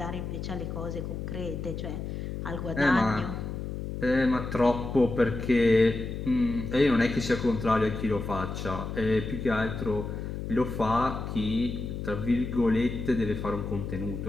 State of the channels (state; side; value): noise; left; hum, 6 dB below the sound